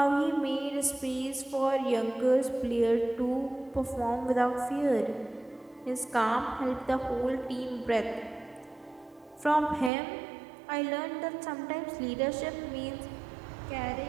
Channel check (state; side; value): drops out; left; at 9.9 s